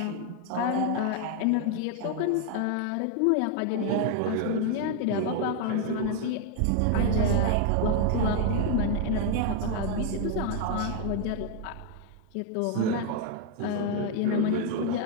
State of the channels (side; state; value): both; different; correlation 0.01